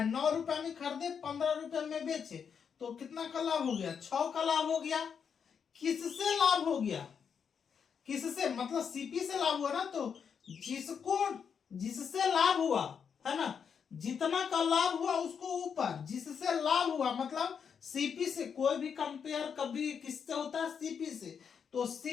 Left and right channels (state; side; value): quieter; right; 6.9 dB